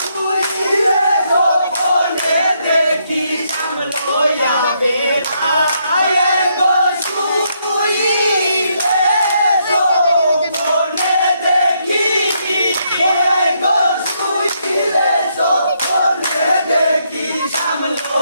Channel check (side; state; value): both; inverted; correlation -0.75